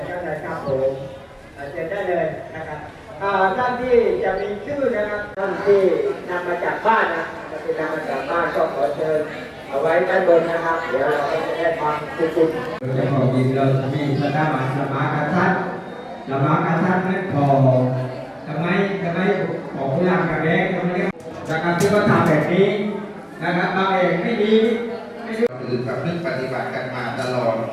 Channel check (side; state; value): both; identical; correlation 1.00